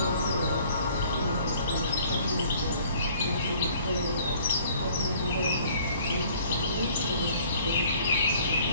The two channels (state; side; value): inverted; both; correlation -0.55